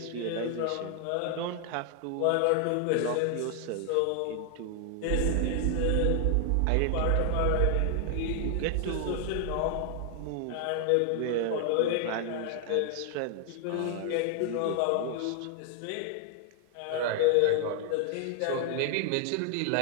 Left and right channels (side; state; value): both; different; correlation 0.00